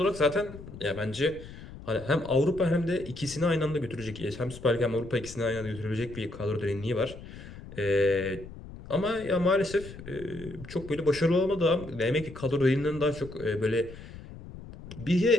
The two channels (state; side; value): noise; left; rumble, 15 dB below the sound